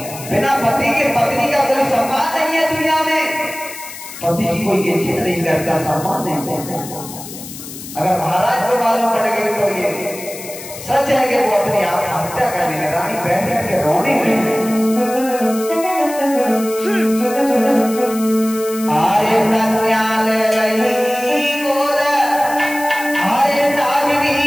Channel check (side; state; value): left; noise; hiss, 13 dB below the sound